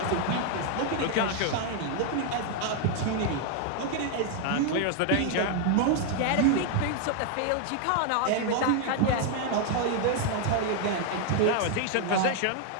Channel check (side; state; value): both; different; correlation 0.00